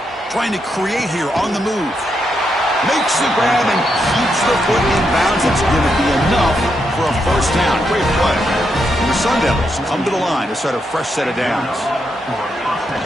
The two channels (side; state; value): both; normal; correlation 0.81